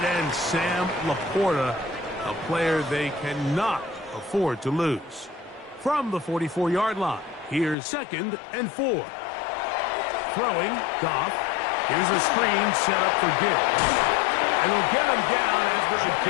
end, Sam Laporta, a player they cannot afford to lose. From the 44-yard line, here's 2nd and 4. Throwing, Goff. Here's a screen set up for Gibbs. And we'll get him down after a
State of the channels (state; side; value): drops out; right; at 7.8 s